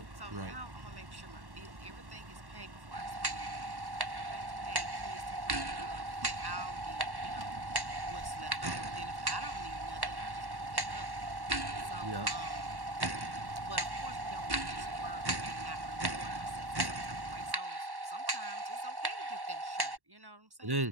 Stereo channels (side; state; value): left; late; 1.1 ms